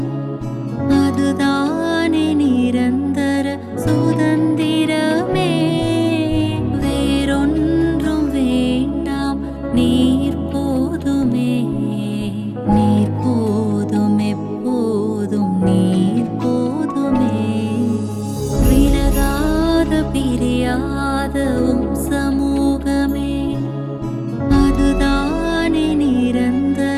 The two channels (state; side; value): identical; both; correlation 1.00